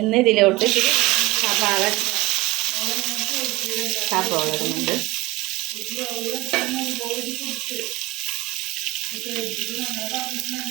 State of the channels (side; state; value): left; quieter; 19.8 dB